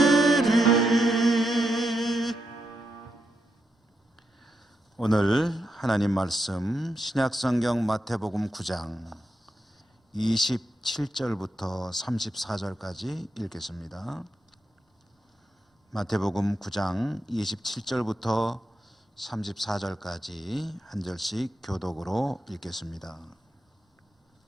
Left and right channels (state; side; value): normal; both; correlation 0.84